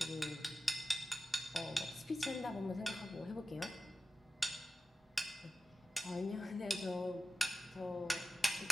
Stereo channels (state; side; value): normal; both; correlation 0.93